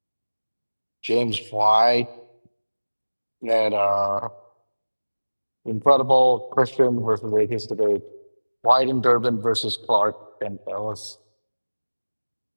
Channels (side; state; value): both; inverted; correlation -1.00